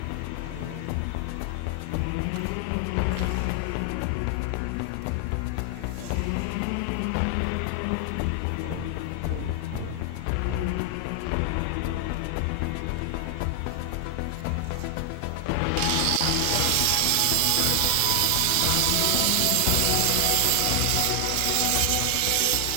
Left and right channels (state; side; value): different; both; correlation 0.00